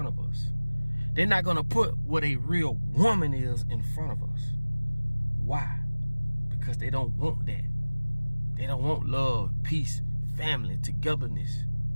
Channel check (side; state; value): both; inverted; correlation -1.00